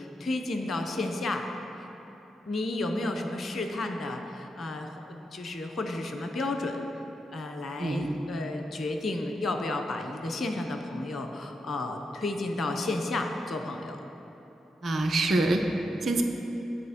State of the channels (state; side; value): normal; both; correlation 0.84